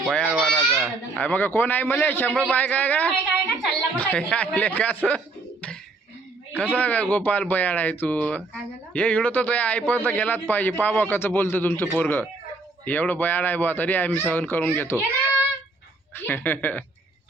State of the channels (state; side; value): quieter; left; 3.5 dB